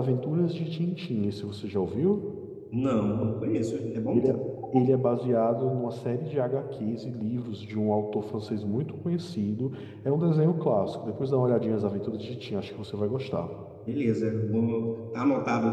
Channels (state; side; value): identical; both; correlation 1.00